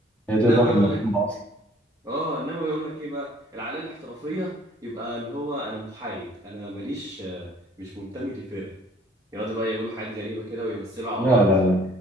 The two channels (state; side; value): normal; both; correlation 0.57